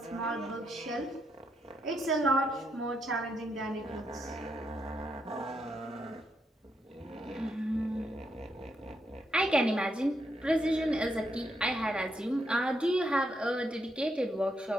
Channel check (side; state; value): both; normal; correlation 0.79